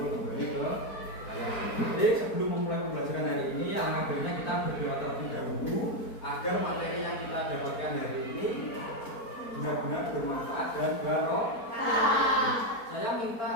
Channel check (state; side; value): late; right; 4.4 ms